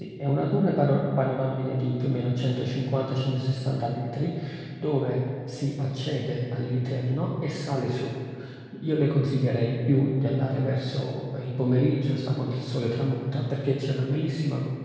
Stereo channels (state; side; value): identical; both; correlation 1.00